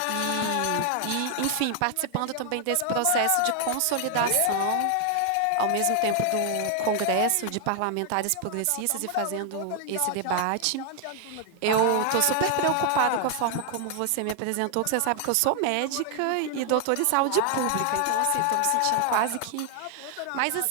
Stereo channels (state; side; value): different; both; correlation 0.00